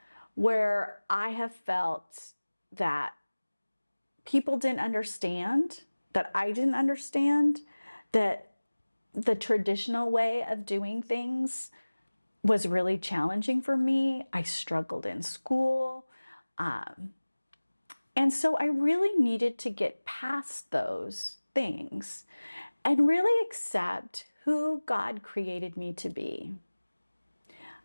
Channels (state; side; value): inverted; both; correlation -1.00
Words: where I have felt that people didn't understand, that I didn't understand, that the traditional way of doing things was really challenging for me. I struggled in school. And so I really needed to get past those things and really accept who God created me to be.